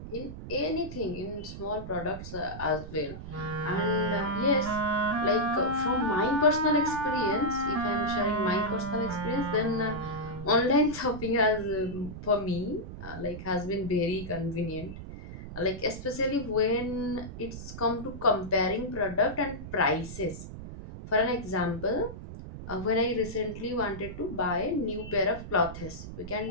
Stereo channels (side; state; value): right; noise; rumble, 11 dB below the sound